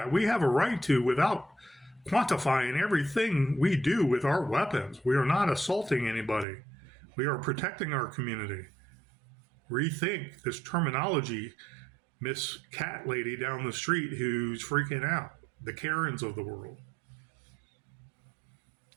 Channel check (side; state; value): left; drops out; at 6.5 s